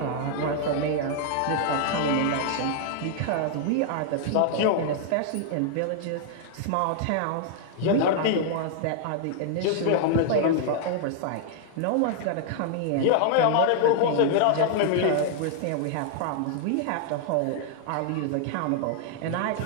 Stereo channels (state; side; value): different; both; correlation -0.01